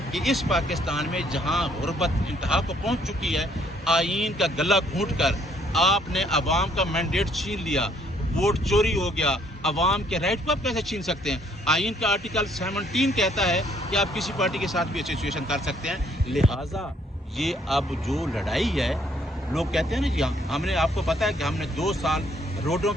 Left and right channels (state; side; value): normal; both; correlation 0.66